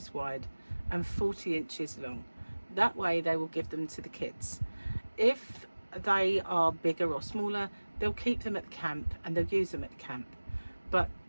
wide and 40 inches long. That way they will give them to the kids. If they are bigger or smaller, they'll keep them at the camp and they'll use them at the camp. But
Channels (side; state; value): both; inverted; correlation -1.00